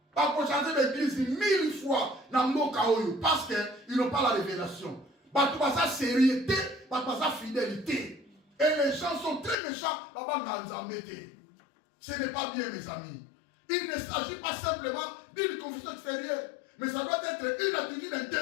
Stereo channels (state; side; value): drops out; right; at 9.6 s